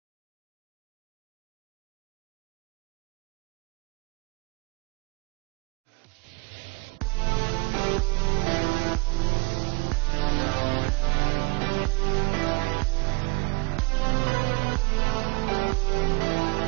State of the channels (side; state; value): left; quieter; 29.1 dB